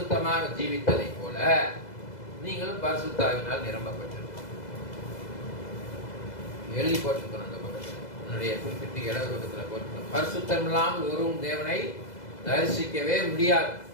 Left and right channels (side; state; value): right; late; 2.0 ms